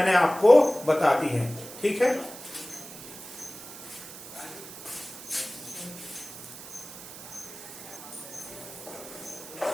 आपको बता दी हैं। ठीक है,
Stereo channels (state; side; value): noise; right; hiss, 14 dB below the sound